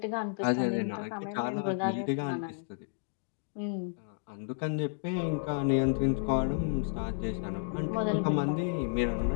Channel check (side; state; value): right; silent; digital silence